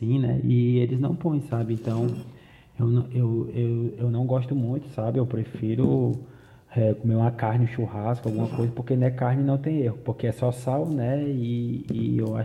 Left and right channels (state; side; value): identical; both; correlation 1.00